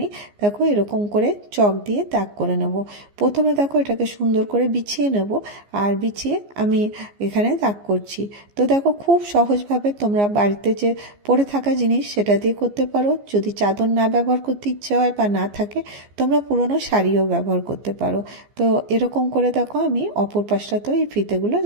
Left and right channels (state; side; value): late; left; 15 ms